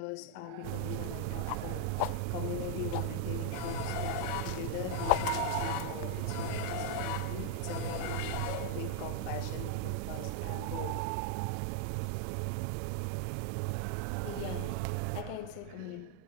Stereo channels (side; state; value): both; different; correlation 0.00